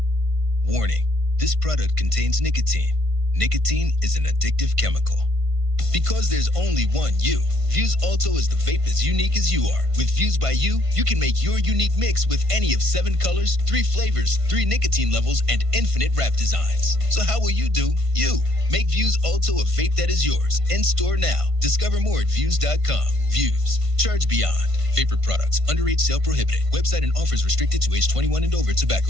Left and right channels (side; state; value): left; late; 1.5 ms